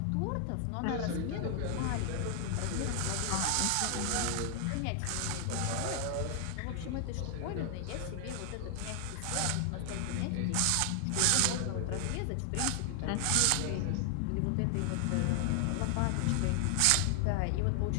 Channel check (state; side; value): different; both; correlation 0.00